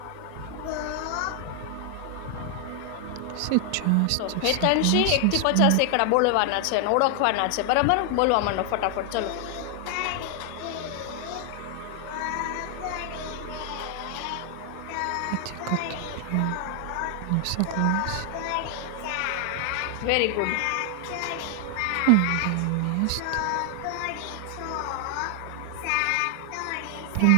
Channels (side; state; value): both; different; correlation 0.00